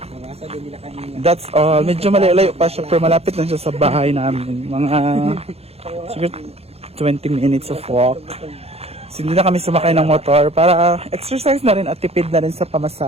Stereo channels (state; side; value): late; left; 0.29 ms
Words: That's all. Medyo malayo pa siya pero malapit lang siya sa bahay namin. Mga siguro 20 minutes of walk. So, hindi na kami sumakay ng motor para exercise na rin at tipid na rin sa